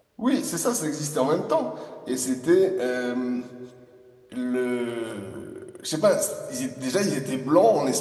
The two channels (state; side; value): identical; both; correlation 1.00